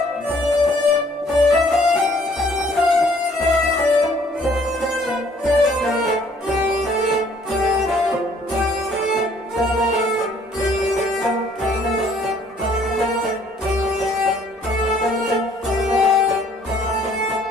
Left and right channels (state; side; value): normal; both; correlation 0.60